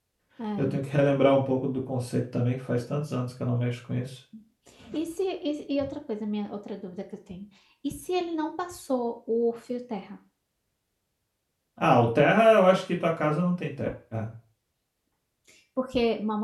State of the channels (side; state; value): both; identical; correlation 1.00